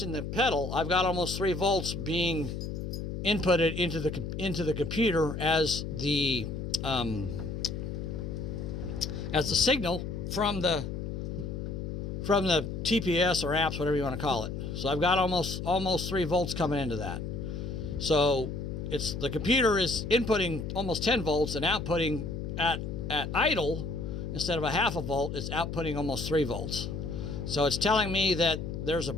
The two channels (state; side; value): noise; left; hum, 5 dB below the sound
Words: the pedal. I've got almost 3 volts being inputted into the computer as the signal from the TPS or apps, whatever you want to call it. So I've got almost 3 volts coming into that. So the computer is inputting almost 10 volts and outputting at idle, instead of a half a volt, it's outputting almost 3 volts. So it's telling me that there's a